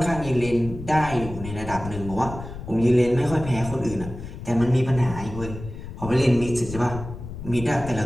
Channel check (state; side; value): noise; left; rumble, 11 dB below the sound